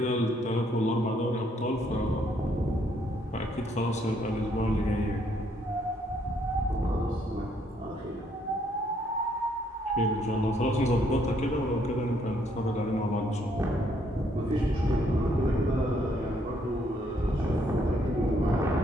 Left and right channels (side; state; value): both; normal; correlation 0.69